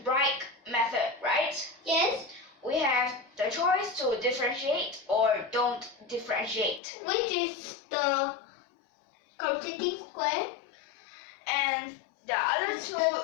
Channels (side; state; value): right; drops out; at 6.8 s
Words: method, right? Yes. We have the choice to differentiate or don't differentiate. Which is the completing square? And the other 2